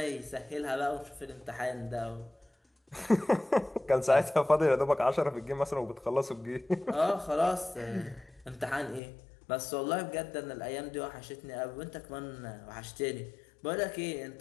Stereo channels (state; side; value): drops out; right; at 9.0 s